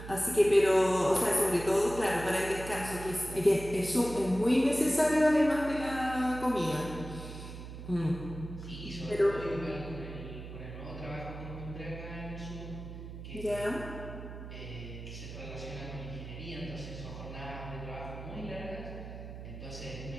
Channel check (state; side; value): noise; right; hum, 11 dB below the sound